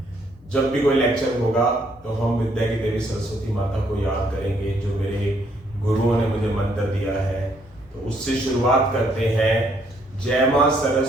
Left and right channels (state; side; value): normal; both; correlation 0.69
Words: जब भी कोई लेक्चर होगा तो हम विद्या की देवी सरस्वती माता को याद करेंगे जो मेरे गुरुओं ने मुझे मंत्र दिया है। तो उससे शुरुआत करते हैं। जय मां